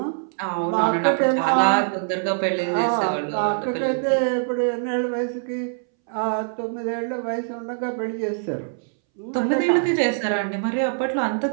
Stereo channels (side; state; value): left; silent; 63 dB below the other